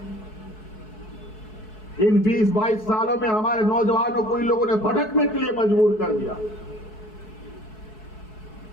इन 20-22 सालों में हमारे नौजवानों को इन लोगों ने भटकने के लिए मजबूर कर दिया,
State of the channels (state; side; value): late; right; 4.7 ms